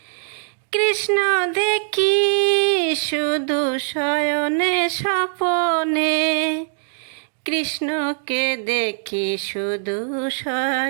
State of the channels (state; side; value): silent; left; digital silence